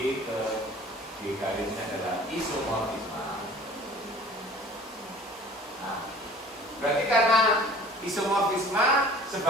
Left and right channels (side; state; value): both; normal; correlation 0.48